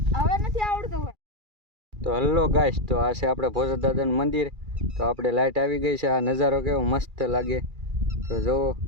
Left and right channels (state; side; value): late; left; 2.4 ms